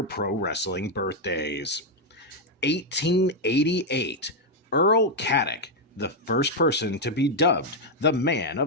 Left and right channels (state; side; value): normal; both; correlation 0.01